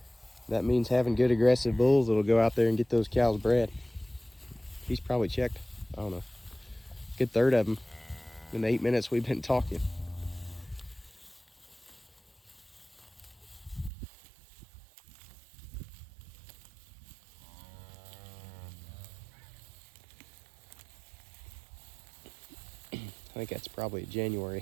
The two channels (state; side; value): drops out; left; at 13.9 s